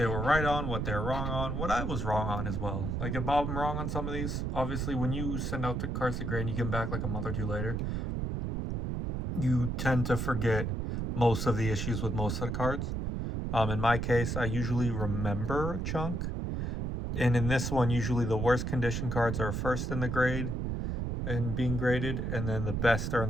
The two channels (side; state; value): right; noise; rumble, 2 dB below the sound